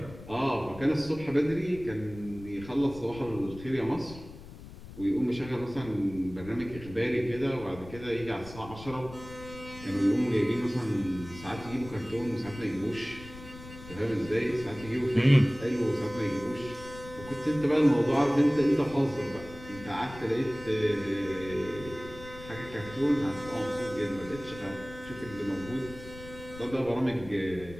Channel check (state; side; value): noise; left; rumble, 15 dB below the sound